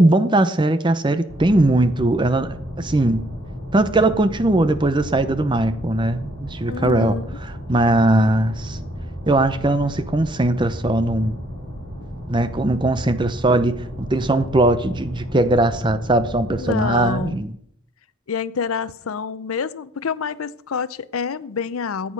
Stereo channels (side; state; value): both; normal; correlation 0.64